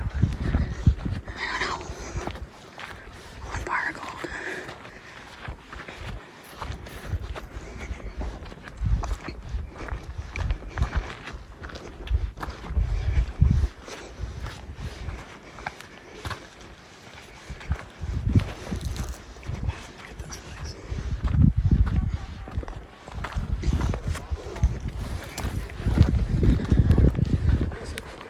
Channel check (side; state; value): both; identical; correlation 1.00